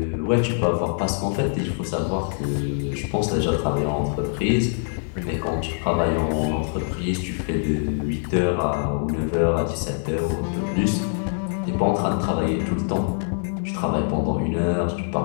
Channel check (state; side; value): silent; right; 62 dB below the other